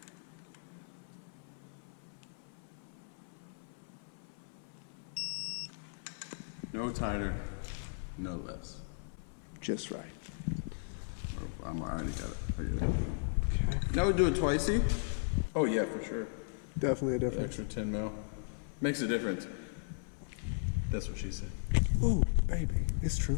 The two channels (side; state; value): right; silent; 53 dB below the other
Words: No tighter, no less. Just right. Oh, I already got it. Okay. Now we do it twicey. Oh yeah, for sure. Definitely a difference. Extra 10 mil. Makes a difference. That's what she said. Oh, baby, it's true.